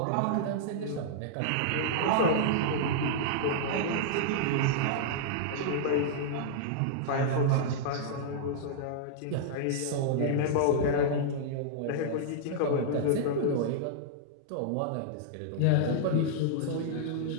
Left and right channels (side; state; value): both; different; correlation -0.02